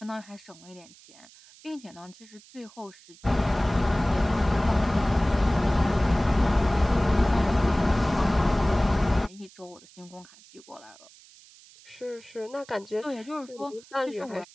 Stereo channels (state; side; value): noise; right; hiss, 24 dB below the sound